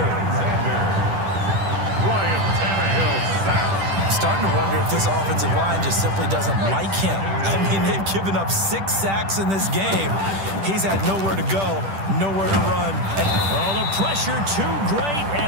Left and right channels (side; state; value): left; late; 10 ms